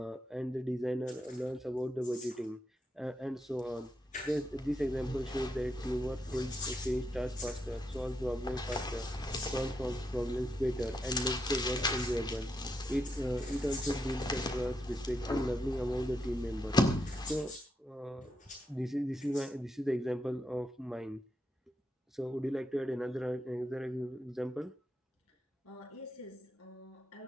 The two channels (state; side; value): normal; both; correlation 0.82